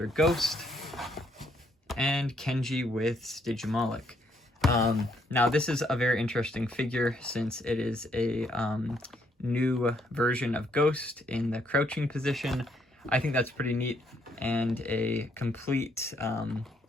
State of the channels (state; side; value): normal; both; correlation 0.71